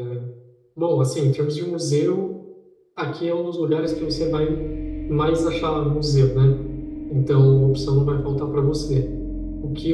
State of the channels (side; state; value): both; identical; correlation 1.00